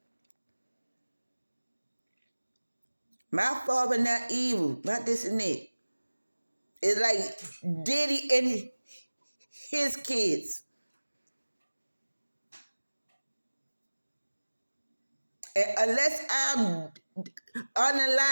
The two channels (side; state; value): both; inverted; correlation -1.00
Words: My father not evil, not this and that. It's like Diddy and his kids. And unless I'm